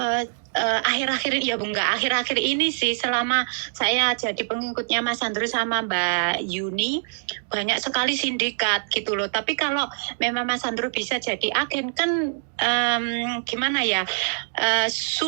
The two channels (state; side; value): silent; left; digital silence